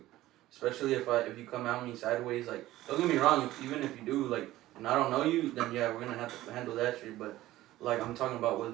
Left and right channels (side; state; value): left; quieter; 15.7 dB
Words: Especially if you come at me sideways, like, don't get me wrong, even if you do, like, and I don't know you, then yeah, we're gonna have to handle that shit. But like I'm talking about with